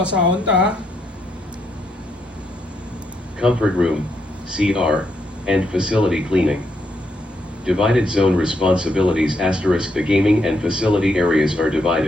ta. Comfort room, CR, and facility cleaning. Divided zone responsibilities *. The gaming and facility areas are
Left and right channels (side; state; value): both; normal; correlation 0.78